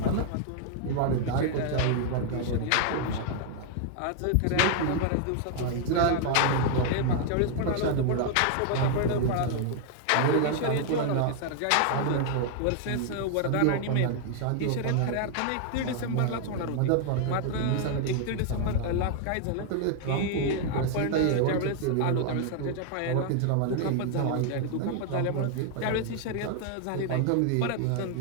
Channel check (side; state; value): both; different; correlation 0.00